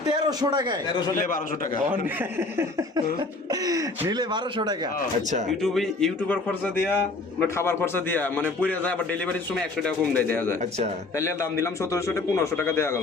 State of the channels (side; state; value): right; quieter; 3.3 dB